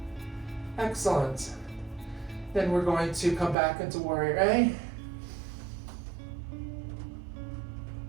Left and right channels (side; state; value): left; drops out; at 3.6 s